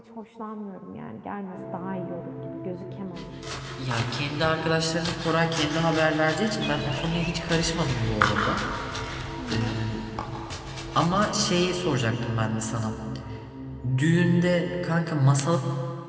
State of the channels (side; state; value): both; identical; correlation 1.00